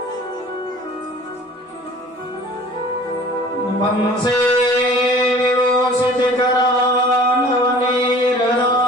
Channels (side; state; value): both; normal; correlation 0.47